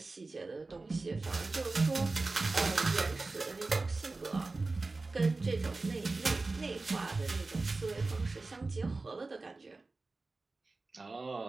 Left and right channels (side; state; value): left; quieter; 3.5 dB